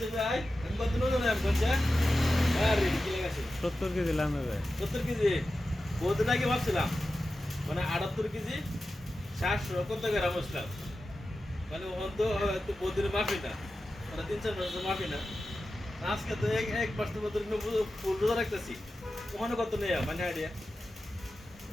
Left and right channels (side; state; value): both; normal; correlation 0.93